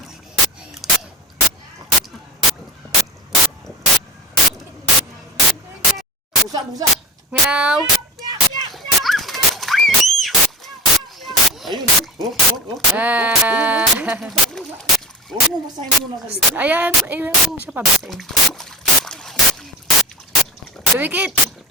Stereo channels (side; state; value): both; normal; correlation 0.31